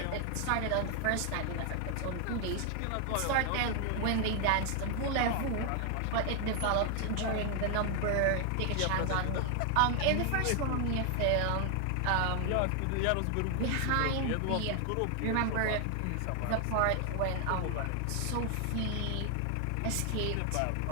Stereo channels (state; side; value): different; both; correlation 0.00